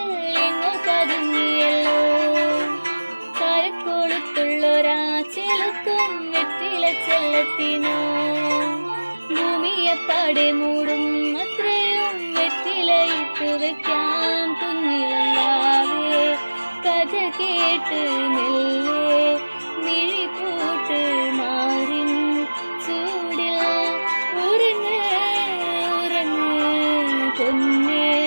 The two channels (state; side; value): inverted; both; correlation -1.00